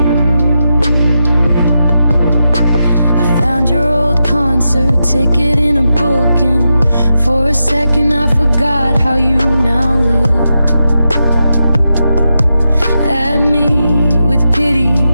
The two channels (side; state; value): both; inverted; correlation -0.88